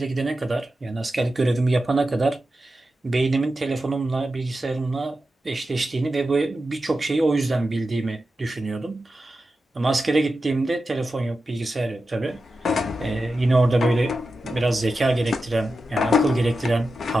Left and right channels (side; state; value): both; normal; correlation 0.91